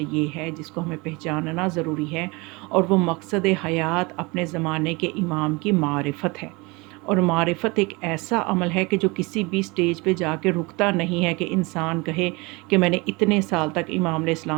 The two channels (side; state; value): left; quieter; 25.9 dB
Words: یہ ہے جس کو ہمیں پہچاننا ضروری ہے، اور وہ مقصد حیات اپنے زمانے کے امام کی معرفت ہے۔ اور معرفت ایک ایسا عمل ہے کہ جو کسی بھی سٹیج پہ جا کے رکتا نہیں ہے کہ انسان کہے کہ میں نے اتنے سال تک امام علیہ